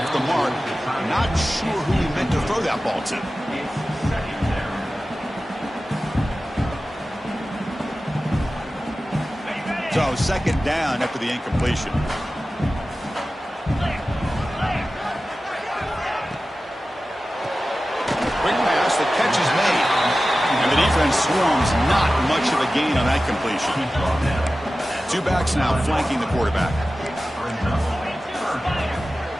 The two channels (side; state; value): both; normal; correlation 0.95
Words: the mark. Not sure who he meant to throw that ball to. So second down after the incompletion. Quick pass, the catch is made. And the defense swarms, not much of a gain on that completion. Two backs now flanking the quarterback.